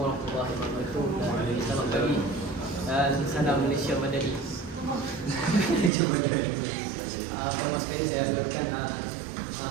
warahmatullahi wabarakatuh. Selamat pagi. Salam Malaysia Madani. Pertama sekali saya agarkan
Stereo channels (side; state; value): left; drops out; at 5.9 s